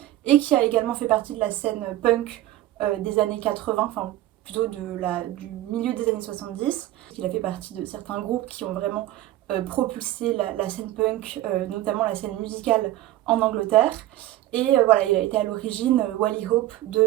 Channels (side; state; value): left; quieter; 14.8 dB